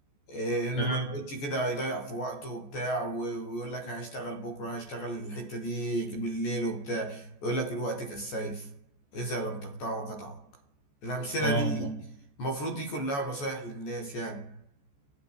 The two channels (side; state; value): right; late; 14 ms